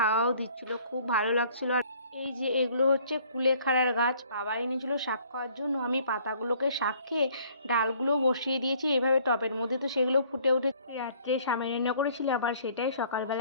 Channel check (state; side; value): inverted; both; correlation -0.58